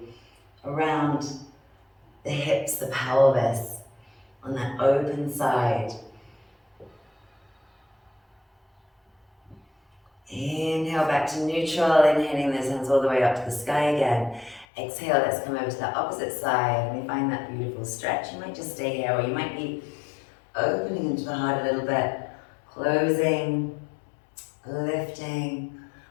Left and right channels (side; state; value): right; drops out; at 14.7 s